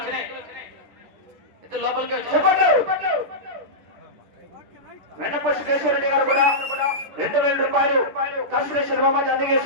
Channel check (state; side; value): late; left; 10 ms